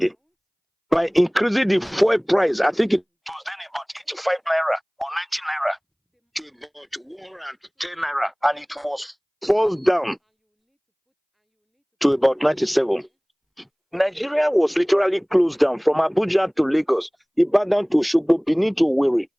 by increasing the fuel price. I think it was then about 85 naira or 90 naira to about 110 naira, and it was forced down to about 97. Nigeria was literally closed down from Abuja to Lagos, Ibadan to Osogbo, Benin to Owerri,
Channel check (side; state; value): both; identical; correlation 1.00